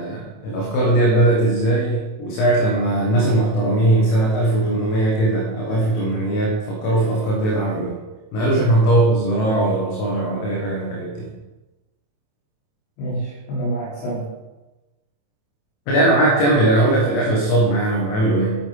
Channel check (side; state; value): right; late; 28 ms